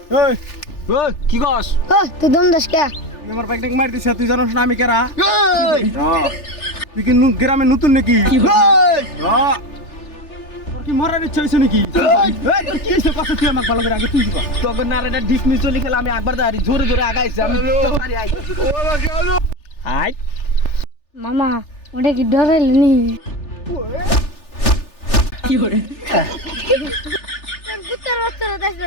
এই ওই কি কস? ও তুই দম দাস কে? তুই আমার বাইক মার দিছে, তুই জানোস না আমি কেরা? তুই কি গ্রামে নতুন নাকি? তোর কি মরার ইচ্ছা হয়েছে নাকি? এই, তোর কি হয়েছে? কথা তুই আমাকে ভালো করে আগে তুই কর। তখন না রে ডিসমিস চলি খেলা আমি একবার দাঁড়ি জোরে জোরে আগাইছি আমি তাড়াতাড়ি আই আই মামা ওটা কি ডরাইল নি? কি করে তোর কুত্তার বাচ্চারা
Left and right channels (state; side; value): late; right; 3.4 ms